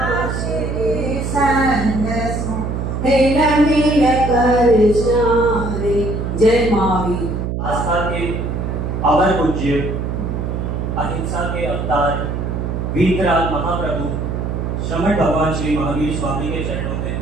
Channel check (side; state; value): right; noise; hum, 2 dB below the sound